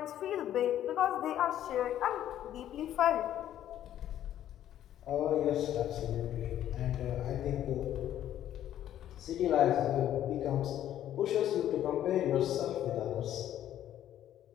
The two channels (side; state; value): right; quieter; 11.6 dB